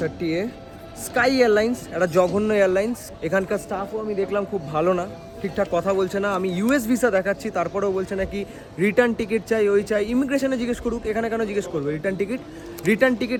30A। Sky airlines একটা জঘন্য এয়ারলাইন্স। এখানকার স্টাফও আমি দেখলাম খুব ভালো না, ঠিকঠাক কথা বলছে না। আমি ইউএস ভিসা দেখাচ্ছি, তারপরেও বলছে নাকি রিটার্ন টিকিট চাই, ওই চাই। ইমিগ্রেশনে জিজ্ঞেস করুক, এখানে কেন জিজ্ঞেস করবে return ticket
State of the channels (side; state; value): both; identical; correlation 1.00